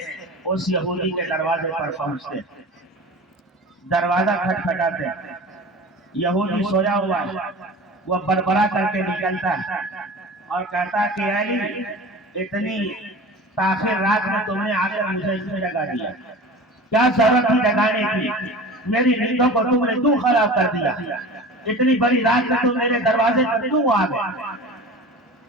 اس یہودی کے دروازے پر پہنچتے، دروازہ کھٹکھٹاتے، یہودی سویا ہوا ہے، وہ بڑبڑا کر کے نکلتا ہے اور کہتا ہے کہ علی اتنی تاخیر رات میں تم نے آ کر مجھے اس میں جگا دیا، کیا ضرورت تھی جگانے کی؟ میری نیندوں کو تم نے کیوں خراب کر دیا؟ اتنی بڑی رات میں تم میرے دروازے پر کیوں آ گئے؟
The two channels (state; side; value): normal; both; correlation 0.36